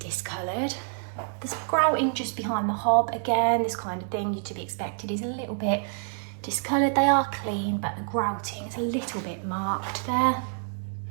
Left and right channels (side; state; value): left; silent; 60 dB below the other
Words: discoloured. There's grouting just behind the hob. Again, this kind of thing to be expected is a little bit discoloured. They are clean, but the grouting is a little bit marked there.